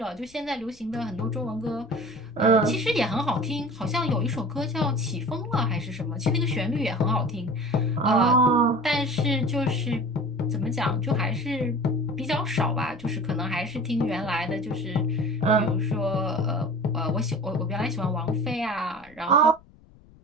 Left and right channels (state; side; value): noise; left; rumble, 26 dB below the sound